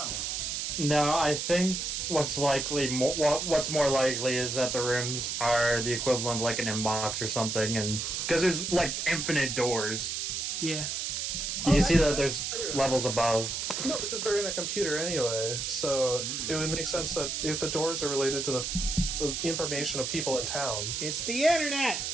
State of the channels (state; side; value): noise; right; hiss, 2 dB below the sound